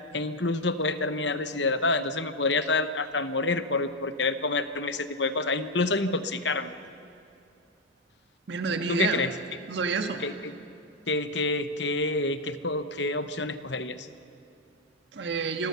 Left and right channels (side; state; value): both; normal; correlation 0.03